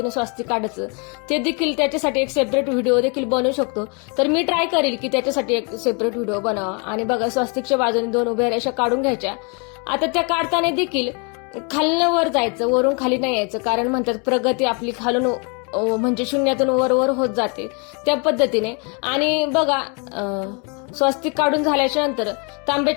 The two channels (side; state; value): right; quieter; 34.5 dB